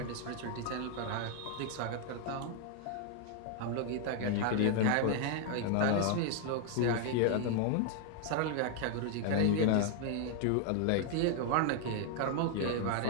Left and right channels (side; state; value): both; different; correlation 0.00